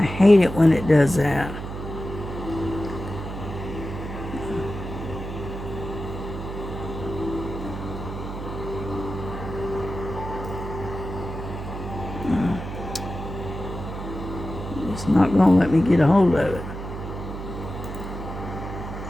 hate it when it does that. It's not going to let me get a hold of it.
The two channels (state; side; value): noise; right; hum, 8 dB below the sound